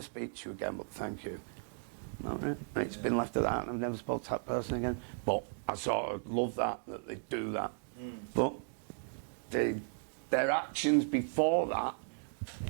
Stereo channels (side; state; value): left; silent; digital silence